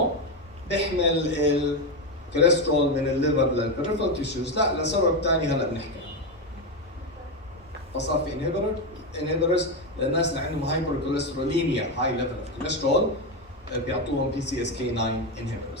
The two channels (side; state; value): both; normal; correlation 0.10